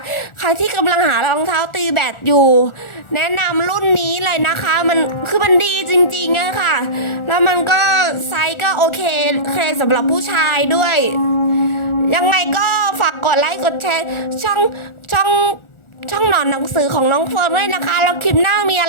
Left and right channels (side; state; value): right; late; 1.4 ms